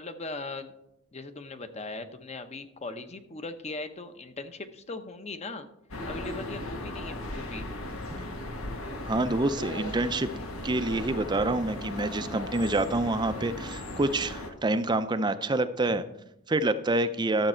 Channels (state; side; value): normal; both; correlation 0.47